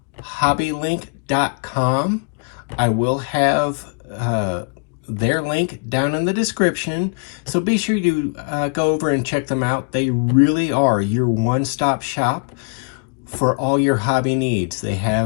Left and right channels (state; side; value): quieter; right; 36.4 dB